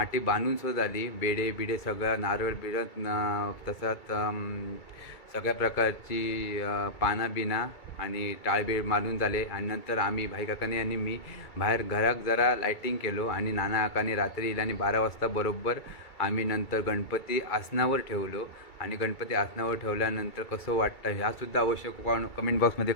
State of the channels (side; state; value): right; late; 2.3 ms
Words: बांधून सुद्धा झाली. बेडे बिडे सगळं नारळ बिडत तसंच सगळ्या प्रकारची पानं बिना आणि टाळबीळ मारून झाले. आणि नंतर आम्ही भाई काकाने आणि मी बाहेर घरात जरा लायटिंग केलो. आणि नाना काकाने रात्री येईल आणि 12 वाजता बरोबर आम्ही नंतर गणपती आसनावर ठेवलो. आणि गणपती आसनावर ठेवल्यानंतर कसं वाटतं ह्यासुद्धा अवश्य कमेंट बॉक्समध्ये